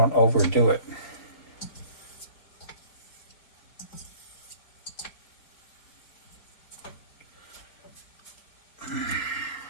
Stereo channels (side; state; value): right; late; 4.7 ms